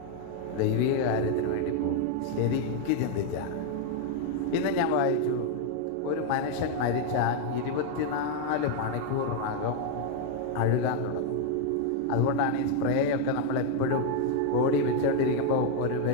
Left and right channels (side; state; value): both; different; correlation 0.00